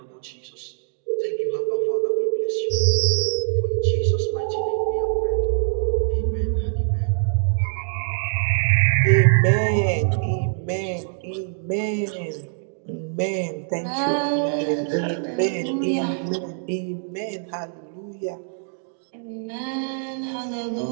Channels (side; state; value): left; silent; digital silence